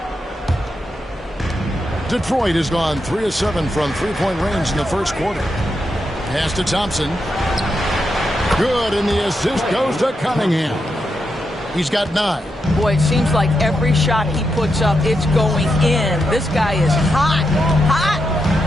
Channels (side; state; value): both; normal; correlation 0.84